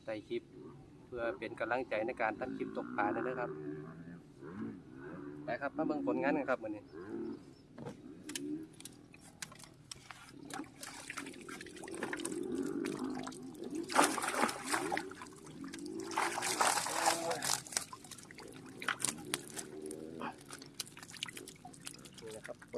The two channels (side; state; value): both; identical; correlation 1.00